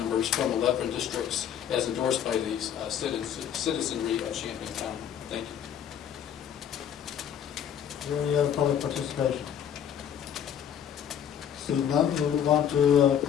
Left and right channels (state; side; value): quieter; right; 9.2 dB